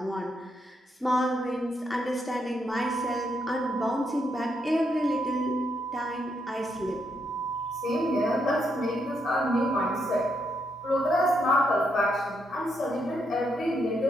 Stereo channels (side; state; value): both; normal; correlation 0.78